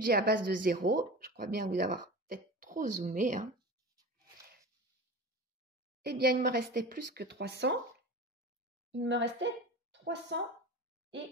à base de 0, je crois bien vous avoir peut-être trop zoomé. Eh bien, il me restait plus que 300. Il me restait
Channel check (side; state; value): both; normal; correlation 0.32